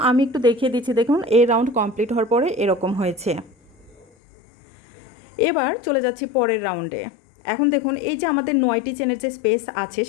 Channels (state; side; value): drops out; right; at 4.0 s